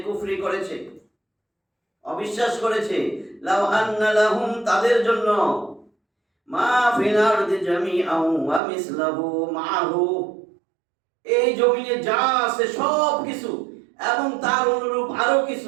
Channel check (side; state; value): left; drops out; at 8.6 s